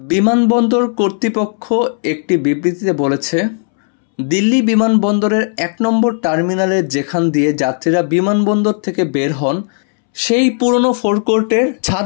কর্তৃপক্ষ একটি বিবৃতিতে বলেছে, দিল্লি বিমানবন্দরের 1 নম্বর টার্মিনালের যেখান দিয়ে যাত্রীরা বিমানবন্দর থেকে বের হন সেই পুরনো ফোরকোর্টের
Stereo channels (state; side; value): silent; right; 69 dB below the other